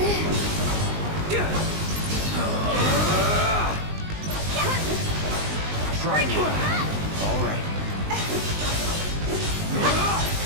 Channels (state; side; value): late; left; 19 ms